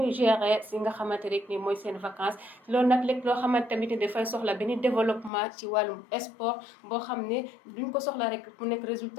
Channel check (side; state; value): right; drops out; at 5.3 s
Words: gérer si nga xamante rek ni mooy seen vacances loolu nag lépp loo xamante tamit dafay soxla benn développement ci wàllum sport boo xam ne duñ ko soxla rek mu nekk